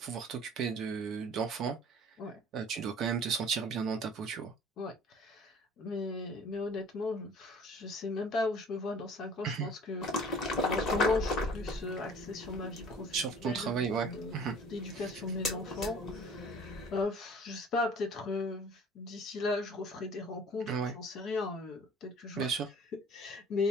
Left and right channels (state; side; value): normal; both; correlation 0.48